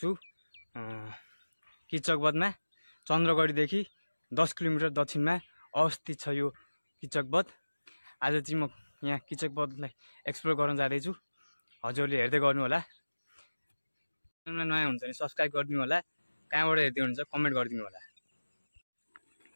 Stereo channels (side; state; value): both; inverted; correlation -1.00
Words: किचकबधमा। चन्द्रगढीदेखि 10 किलोमिटर दक्षिणमा अवस्थित छ यो किचकबध। आज चाहिँ म यहाँ किचकबधलाई एक्सप्लोर गर्न जाँदै छु। हजुरले हेर्दै गर्नु होला। च्यानलमा नयाँ हुन्छ भने सब्स्क्राइब गरिदिनु होला। कहाँबाट हेर्दै हुनुहुन्छ कमेन्ट गरिदिनु होला।